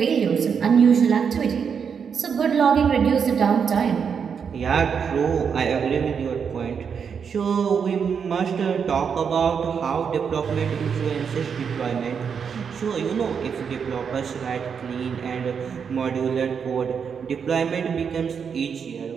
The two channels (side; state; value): left; quieter; 6.7 dB